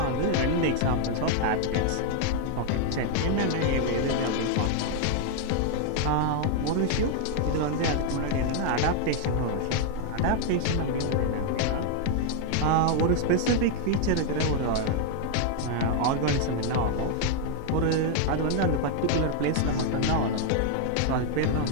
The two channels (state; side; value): different; both; correlation 0.00